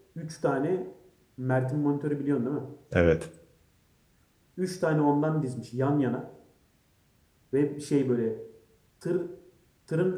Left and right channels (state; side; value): identical; both; correlation 1.00